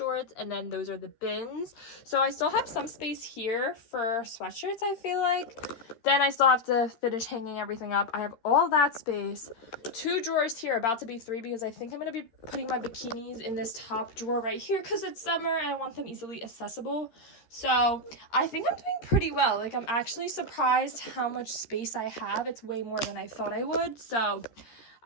and then those are the bins. So I still have some space here for sweatshirts, I feel like. Then I still have to finish hanging everything up. I have all that space. Two drawers here, about to be three, because I think I'm going to be putting my bikinis in this top drawer right here because it's summer and I want them easily accessible. So I think I'm doing pretty well. Like, I'm actually surprised how much space I have. It's way more than I thought I would. So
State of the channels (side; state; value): right; late; 13 ms